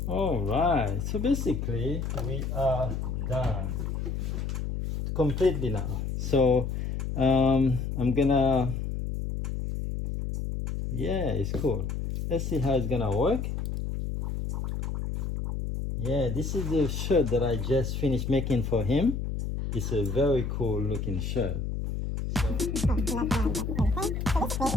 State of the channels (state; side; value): noise; left; hum, 3 dB below the sound